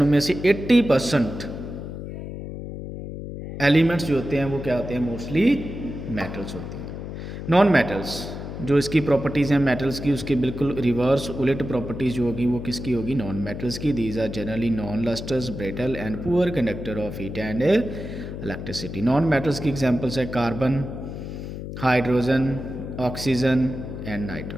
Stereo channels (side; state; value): left; noise; hum, 8 dB below the sound